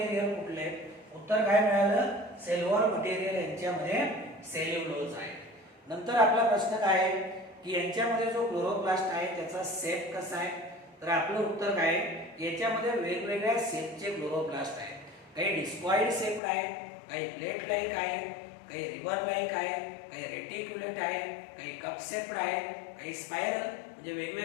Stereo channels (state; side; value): drops out; right; at 16.4 s